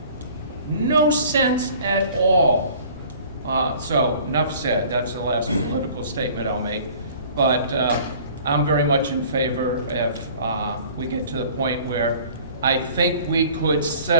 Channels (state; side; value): inverted; both; correlation -0.49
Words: No sense at all. So, enough said. That's the last political statement I'll make. But I'm very much in favor if we get to the point where I think we could